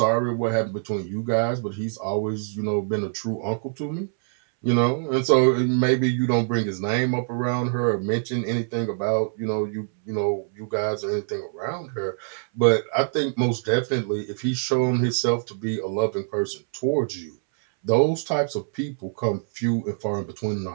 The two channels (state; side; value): silent; left; 62 dB below the other